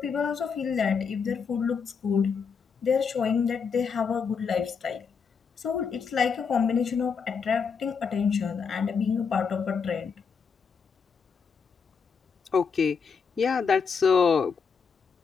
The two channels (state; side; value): quieter; right; 5.9 dB